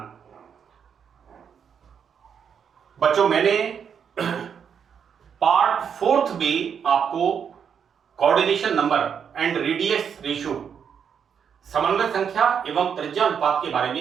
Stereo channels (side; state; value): left; quieter; 7.4 dB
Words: बच्चों, मैंने part 4th में आपको coordination number and radius ratio, समन्वय संख्या एवं त्रिज्या अनुपात के बारे